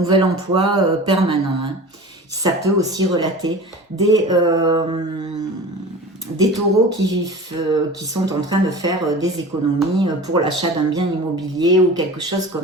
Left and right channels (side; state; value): both; normal; correlation 0.36